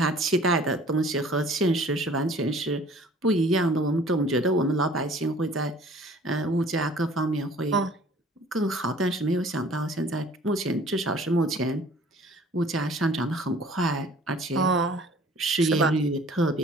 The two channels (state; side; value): normal; both; correlation 0.52